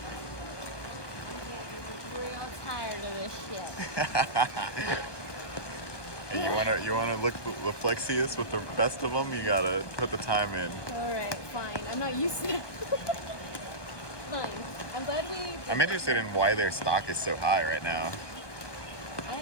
Real tired of this shit. And you wanna look the flexiest with the best of them, you gotta put the time in. Alright, fine. I'm not used to that. Fine. I'm glad we. I'm interested in why their stock is so high right now.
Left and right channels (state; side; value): late; right; 1.2 ms